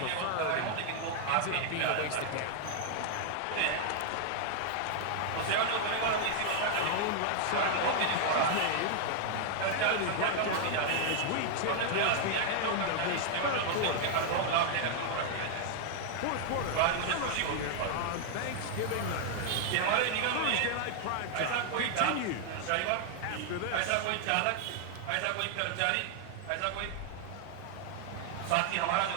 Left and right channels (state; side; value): different; both; correlation 0.00